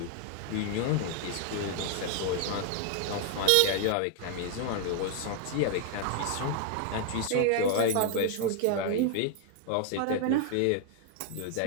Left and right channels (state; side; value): different; both; correlation 0.00